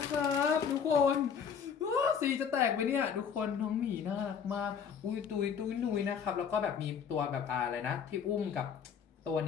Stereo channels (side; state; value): right; quieter; 7.1 dB